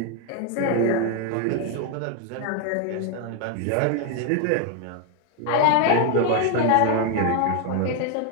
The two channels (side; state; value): both; different; correlation 0.00